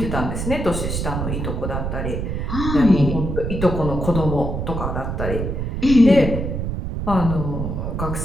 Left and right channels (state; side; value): noise; right; rumble, 3 dB below the sound